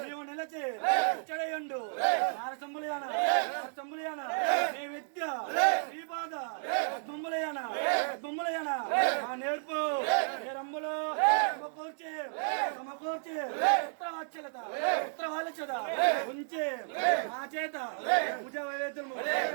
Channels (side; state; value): left; silent; digital silence